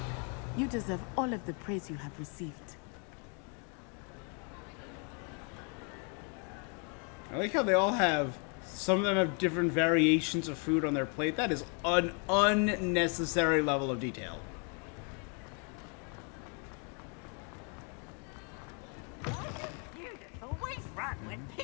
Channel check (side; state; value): right; quieter; 38.1 dB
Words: You deserve all of the praise you have received. I like how they all have. Some of them have different variations of food on their plate. That is an unnecessary level of detail.